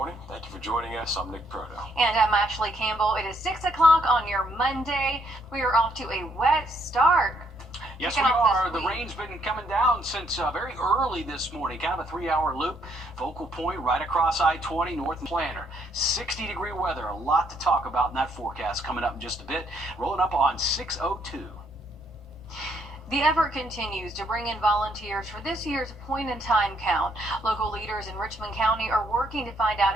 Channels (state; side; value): noise; left; rumble, 23 dB below the sound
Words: Thank you for joining us. I'm Nick Proto. And I'm Ashley Campbell. It is 6 o'clock on your Monday. We are off to a wet start. Yes, we are. The rain's been coming down since very early this morning. Kind of a 3-hour loop. Focal point right across I-20 north and Planter. 60-degree weather. A lot to talk about in that forecast coming up in just a bit. Rolling up on 6:02. The effort continues to bring in volunteers for this year's point-in-time count. Local leaders in Richmond County are working to find out